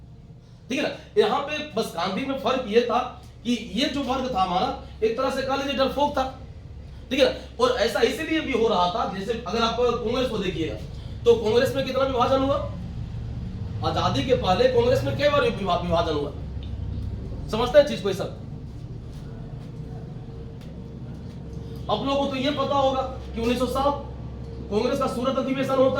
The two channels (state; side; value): identical; both; correlation 1.00